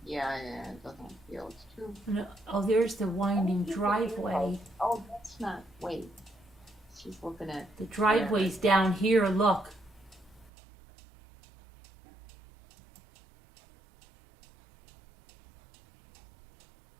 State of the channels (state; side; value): drops out; left; at 10.5 s